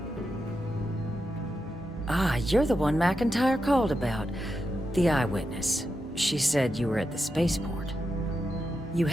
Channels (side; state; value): both; normal; correlation 0.87